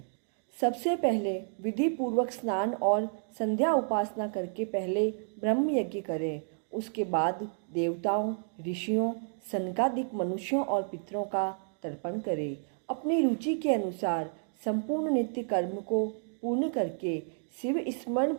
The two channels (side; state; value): left; silent; 57 dB below the other